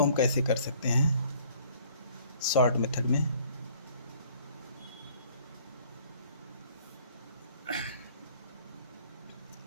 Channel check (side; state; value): both; inverted; correlation -0.57